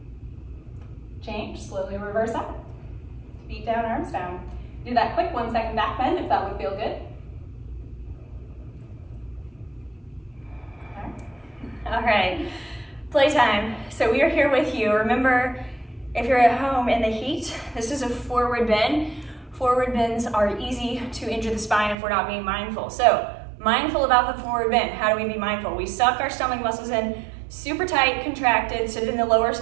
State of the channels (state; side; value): drops out; left; at 22.0 s